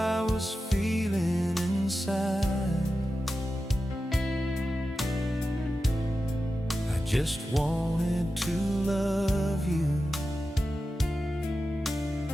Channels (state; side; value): normal; both; correlation 0.92